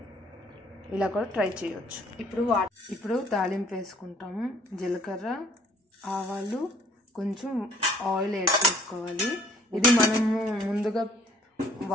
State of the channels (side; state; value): both; normal; correlation 0.59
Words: ఇలా కూడా ట్రై చేయొచ్చు. ఇప్పుడు తాలింపు వేసుకుంటాము. జీలకర్ర, ఆవాలు, కొంచెం ఆయిల్ యాడ్ చేసుకోవాలి. ఇది మనము ముందుగా